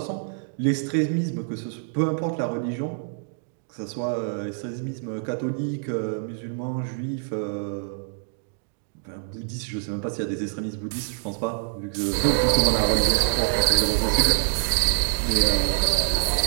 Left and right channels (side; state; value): left; silent; digital silence